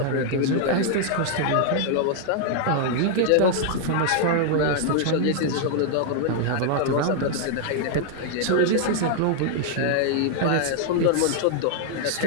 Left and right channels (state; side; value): different; both; correlation 0.00